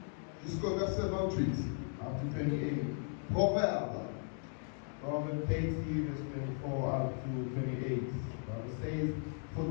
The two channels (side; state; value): right; silent; 53 dB below the other